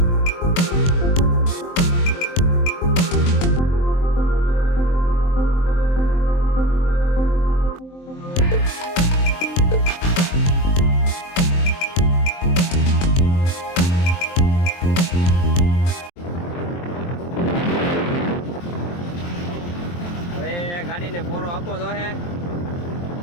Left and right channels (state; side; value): late; right; 23 ms